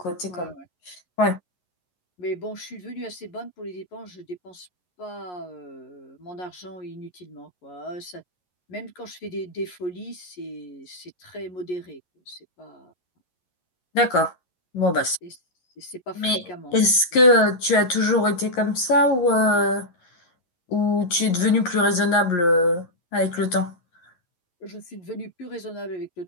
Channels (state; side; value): late; right; 11 ms